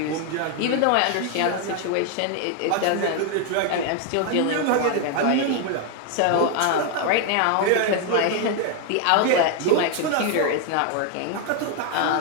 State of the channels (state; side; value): different; both; correlation 0.01